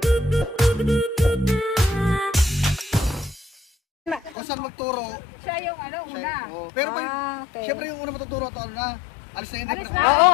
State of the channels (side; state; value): right; drops out; at 4.4 s